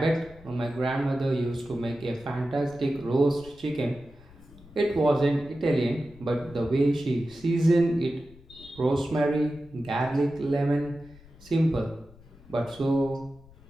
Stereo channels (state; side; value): noise; left; rumble, 23 dB below the sound